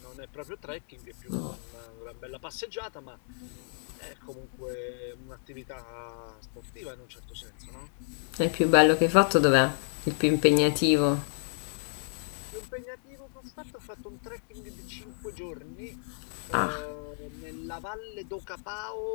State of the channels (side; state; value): right; silent; digital silence